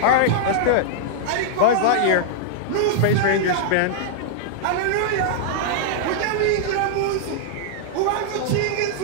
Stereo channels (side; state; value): both; different; correlation -0.01